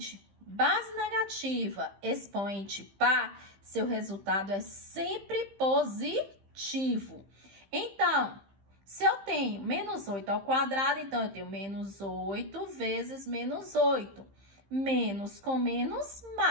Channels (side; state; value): left; late; 15 ms